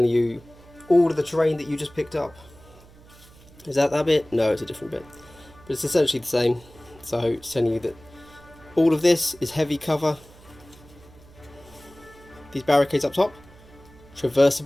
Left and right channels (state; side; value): noise; right; hum, 23 dB below the sound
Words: you all of the terrain that you just picked up. Is that bit? No, it's a different bit. But it's essentially the same. So it's telling you that all of this is heavy cover. These barricades up top,